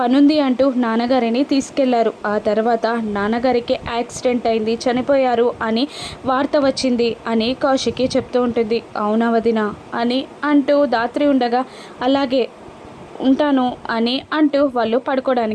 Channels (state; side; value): identical; both; correlation 1.00